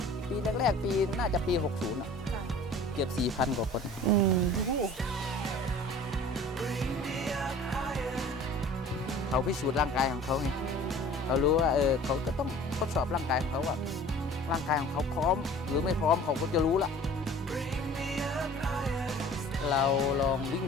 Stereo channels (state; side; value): normal; both; correlation 0.46